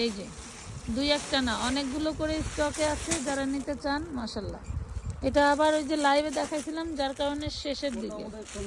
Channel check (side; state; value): both; identical; correlation 1.00